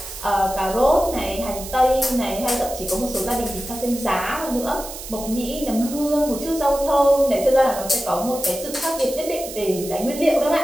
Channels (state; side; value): noise; right; hiss, 11 dB below the sound